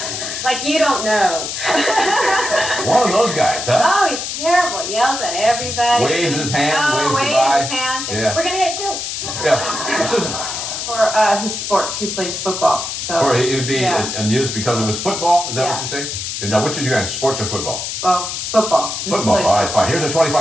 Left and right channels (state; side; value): noise; left; hiss, 5 dB below the sound